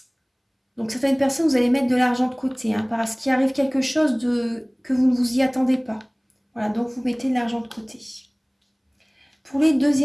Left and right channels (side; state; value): both; identical; correlation 1.00